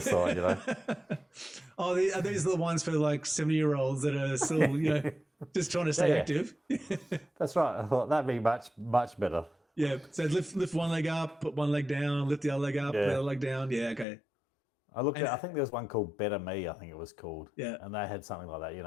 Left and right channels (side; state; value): right; drops out; at 14.1 s